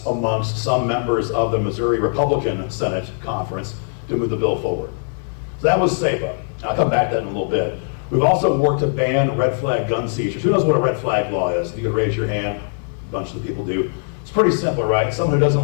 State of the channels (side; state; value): right; silent; 61 dB below the other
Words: amongst some members of the Missouri Republican Senate Conference to move the bill forward. So that was SEPA. I'll come back to that in a little bit. We've also worked to ban red flag gun seizures. Who knows what a red flag law is? You could raise your hand. A bunch of the people do. It's pretty simple, right? Someone who